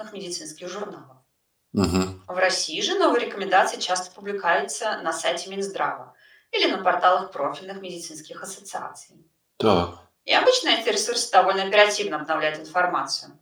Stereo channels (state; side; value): identical; both; correlation 1.00